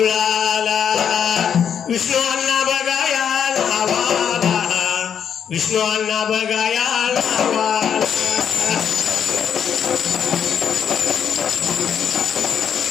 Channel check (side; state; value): right; quieter; 8.0 dB